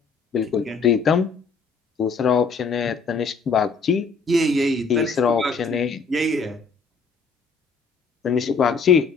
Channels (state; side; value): quieter; right; 4.6 dB